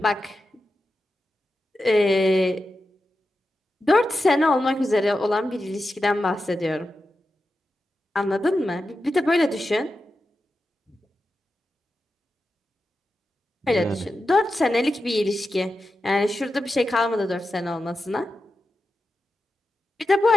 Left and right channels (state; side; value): normal; both; correlation 0.90